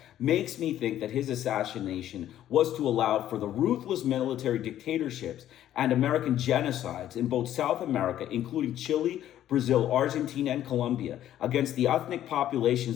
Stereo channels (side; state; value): right; quieter; 11.9 dB